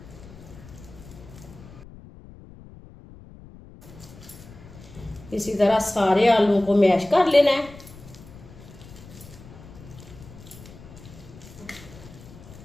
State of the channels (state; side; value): noise; left; rumble, 18 dB below the sound